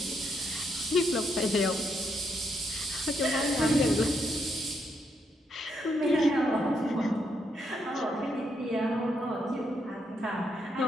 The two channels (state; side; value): normal; both; correlation 0.77